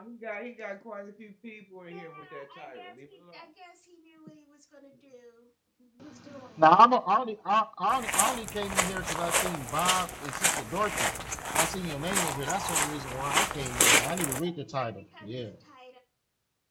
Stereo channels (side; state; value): both; identical; correlation 1.00